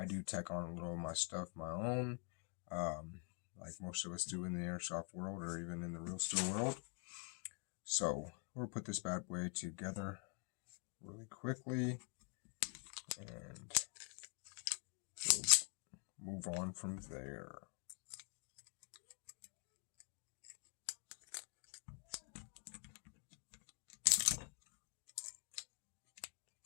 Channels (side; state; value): right; quieter; 38.1 dB